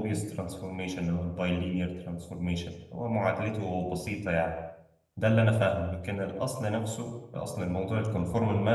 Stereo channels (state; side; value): identical; both; correlation 1.00